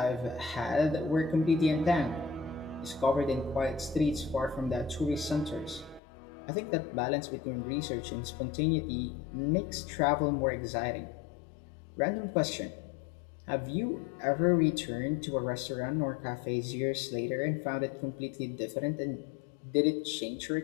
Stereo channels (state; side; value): drops out; right; at 6.0 s